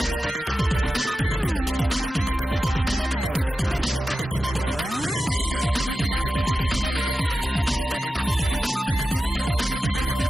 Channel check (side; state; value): both; normal; correlation 0.91